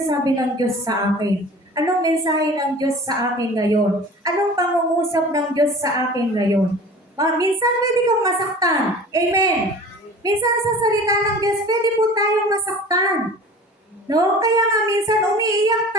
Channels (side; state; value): both; normal; correlation 0.41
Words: ng Diyos sa akin? Anong mensahe ng Diyos sa akin ngayon? Anong pangungusap ng Diyos sa akin ngayon? Minsan pwede kang masaktan. Amen. Minsan sa salita ng Diyos, pwede po tayong masaktan. No? Kaya nga minsan umiiyak